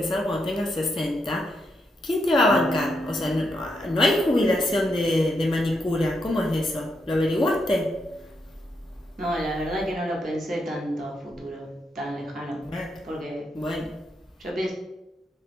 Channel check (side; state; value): both; normal; correlation 0.81